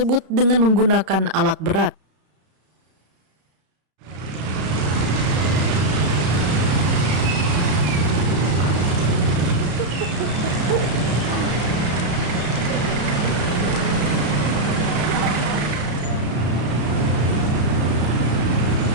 dengan menggunakan alat berat.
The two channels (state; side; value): late; left; 33 ms